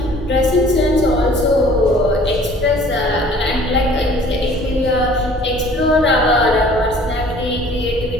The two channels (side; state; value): both; normal; correlation 0.52